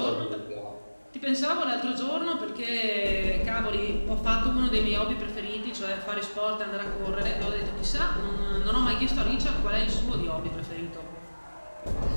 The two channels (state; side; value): inverted; both; correlation -1.00